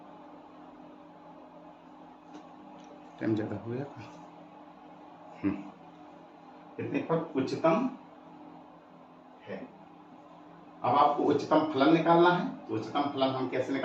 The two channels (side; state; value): both; identical; correlation 1.00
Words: टाइम ज्यादा हो गया, इतने पर उच्चतम है। अब आपको उच्चतम फलन निकालना है, तो उच्चतम फलन हम कैसे